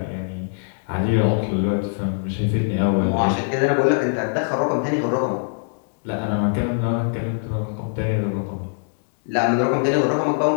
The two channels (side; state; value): right; silent; digital silence